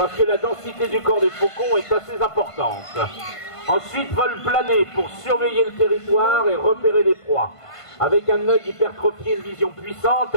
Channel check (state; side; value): late; right; 1.5 ms